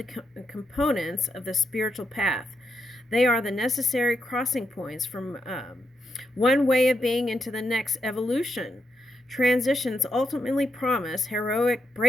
components of the spiritual path. They are the necessary crossing points from one way of being into the next evolution. Transitions ultimately promise heroic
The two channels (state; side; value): normal; both; correlation 0.82